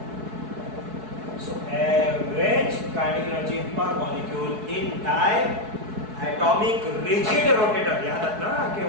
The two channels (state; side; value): late; left; 4.7 ms